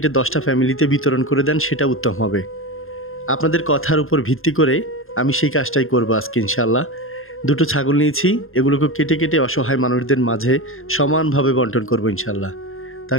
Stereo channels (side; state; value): right; late; 0.60 ms